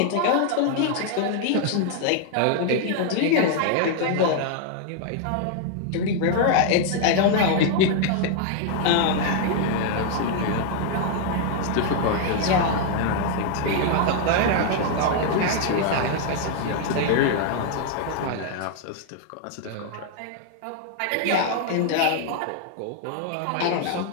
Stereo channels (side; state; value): both; different; correlation 0.00